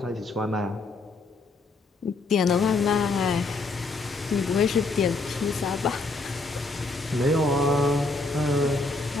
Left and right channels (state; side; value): quieter; right; 3.4 dB